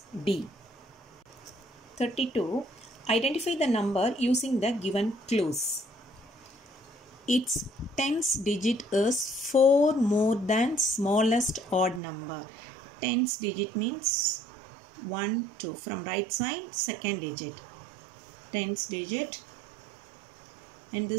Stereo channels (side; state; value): left; drops out; at 12.0 s